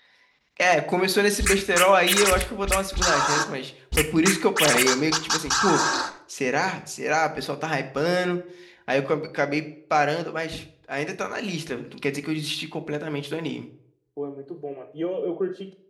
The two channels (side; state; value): both; identical; correlation 1.00